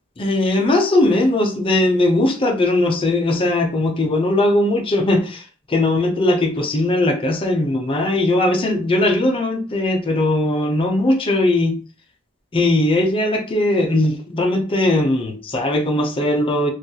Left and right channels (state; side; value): normal; both; correlation 0.68